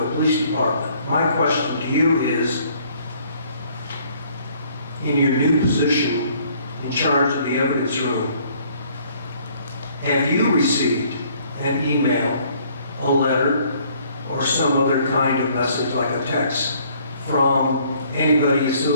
Police Department. My question to you is, in your new position in charge of the evidence room, have you received an email, a letter, or some other kind of message like a text from anybody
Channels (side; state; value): both; inverted; correlation -0.61